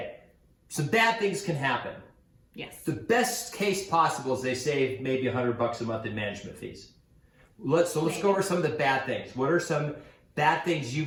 Some bad things can happen. Yes. The best case possible is they save maybe $100 a month in management fees. Let's go over some of the bad things. What are some bad things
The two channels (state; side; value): identical; both; correlation 1.00